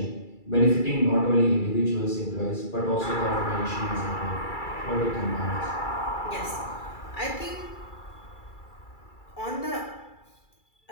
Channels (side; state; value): right; late; 2.3 ms